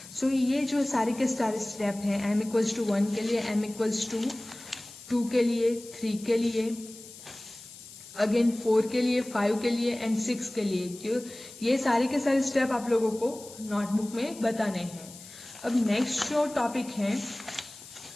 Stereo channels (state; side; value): noise; left; hiss, 17 dB below the sound